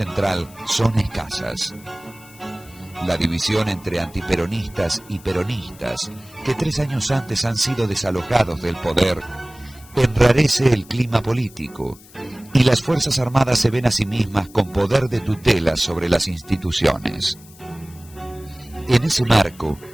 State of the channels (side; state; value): left; noise; hiss, 23 dB below the sound